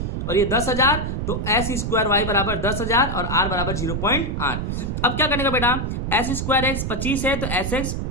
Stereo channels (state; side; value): noise; right; rumble, 2 dB below the sound